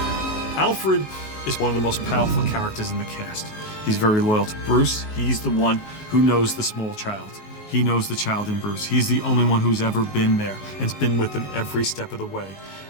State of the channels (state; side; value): late; right; 19 ms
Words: Alfred is one of the most powerful characters in the cast. He's very loyal to Bruce. He's the one who knows the small child. He knows the child in Bruce. He's the only one who's ever been there and's been with him every step of the way.